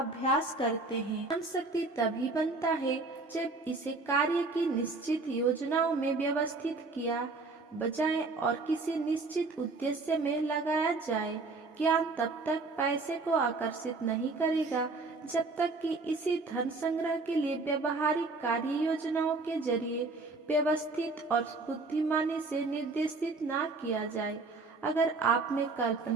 करते हैं। ज्ञान शक्ति तभी बनता है जब इसे कार्य की निश्चित योजनाओं में व्यवस्थित किया जाए और किसी निश्चित उद्देश्य में लगाया जाए। ज्ञान तब तक पैसे को आकर्षित नहीं करेगा जब तक कि इसी धन संग्रह के लिए व्यवहारिक कार्य योजनाओं के जरिए व्यवस्थित और बुद्धिमानी से निर्देशित ना किया जाए। अगर आप में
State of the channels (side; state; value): left; quieter; 3.7 dB